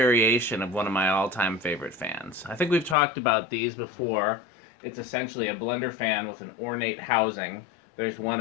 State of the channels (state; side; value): drops out; right; at 3.0 s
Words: of one of my all-time favorite fans. I think we've talked about these before. It's essentially a blender fan with an ornate housing. There's 1